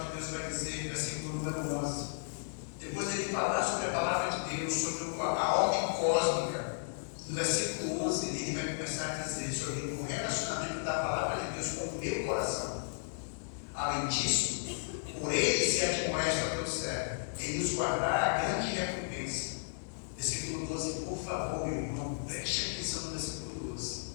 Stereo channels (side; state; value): right; silent; 55 dB below the other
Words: de Deus vai dizer, versículo número 11. Depois ele falar sobre a palavra de Deus, sobre a ordem cósmica. No versículo 11 ele vai começar a dizer sobre o relacionamento da palavra de Deus com o meu coração. Além disso, por ele se admoesta ao teu servo, ele nos guardará a grande recompensa. Versículo 12, por favor, meu irmão, preste atenção no versículo 12.